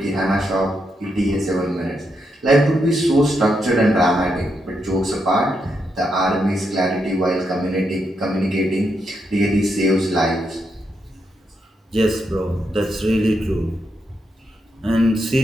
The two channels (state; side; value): normal; both; correlation 0.82